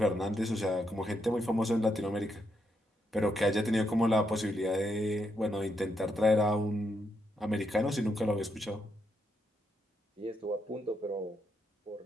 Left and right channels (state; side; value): normal; both; correlation 0.80